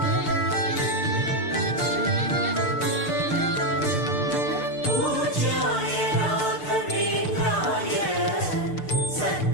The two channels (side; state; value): right; late; 6.7 ms